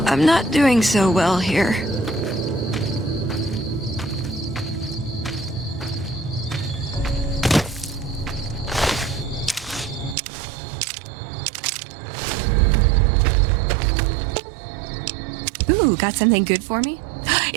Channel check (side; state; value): left; drops out; at 10.2 s